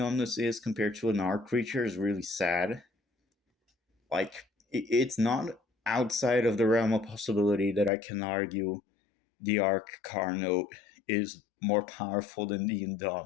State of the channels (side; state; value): right; drops out; at 7.9 s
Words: is compared to an arc creature is really sad. Like it's not outside of the realm of possibility that I can argue the arc Carno is more powerful than the